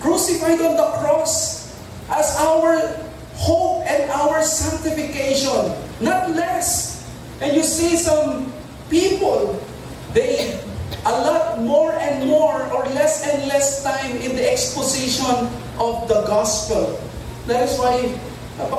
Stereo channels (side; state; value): both; identical; correlation 1.00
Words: crucified on the cross, as our hope and our sanctification, not less. And you see some people, they a lot more and more or less and less time in the exposition of the gospel. That is why